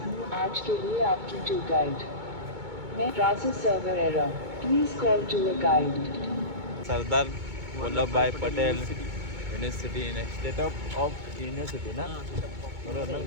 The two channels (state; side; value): late; left; 2.2 ms